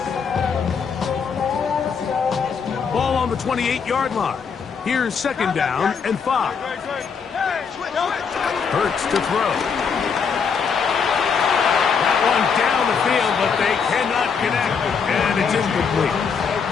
Ball on the 28-yard line. Here's second down and 5. Hurts to throw. That one down the field, but they cannot connect, and it's incomplete.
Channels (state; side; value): quieter; right; 6.1 dB